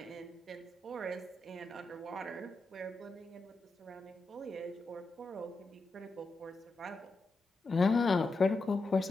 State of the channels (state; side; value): quieter; right; 3.0 dB